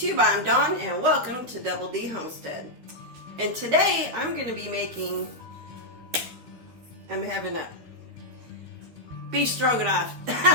I'm Dawn and welcome to Double D Homestead. And today I'm going to be making, I'm having a beef stroganoff.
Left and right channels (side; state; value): left; late; 12 ms